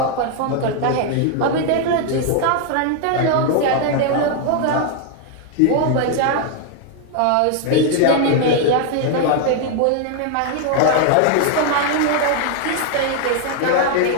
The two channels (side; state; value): both; different; correlation 0.00